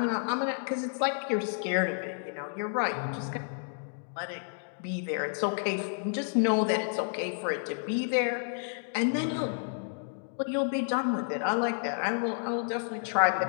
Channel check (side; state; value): right; silent; digital silence